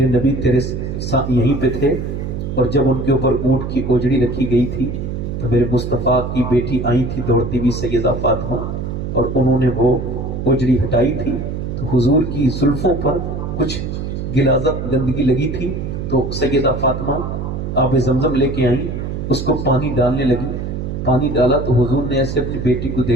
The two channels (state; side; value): noise; right; hum, 5 dB below the sound